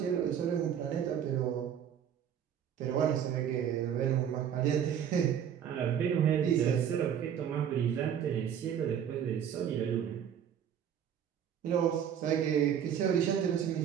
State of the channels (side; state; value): left; quieter; 8.9 dB